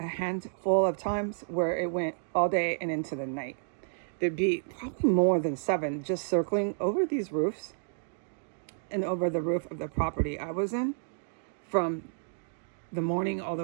handful of times where it went all day and into the night. There'd be probably more than 7 just circling over these roofs and over the roof of the property I was in from the morning all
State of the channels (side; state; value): left; silent; digital silence